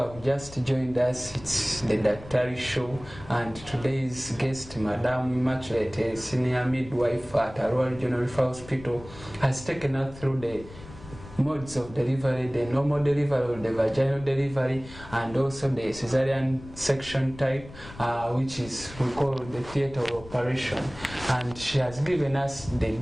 just joined us, it's the Daktari show, and today's guest, Madam Immaculate, a senior midwife at a Royal General Hospital, has taken us through the modes of delivery, the normal delivery or the vaginal delivery, and also the cesarian section type, which is we call the theater operation. And she has given us the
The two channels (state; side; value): noise; left; rumble, 17 dB below the sound